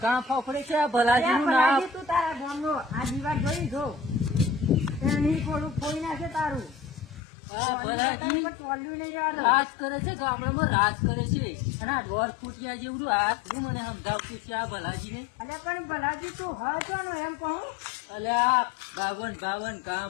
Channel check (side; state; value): right; drops out; at 7.2 s